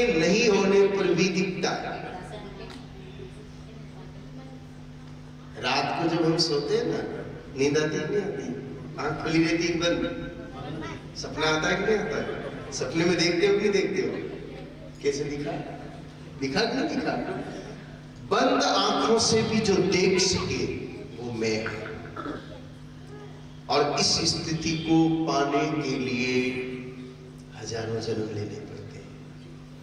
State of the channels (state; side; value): identical; both; correlation 1.00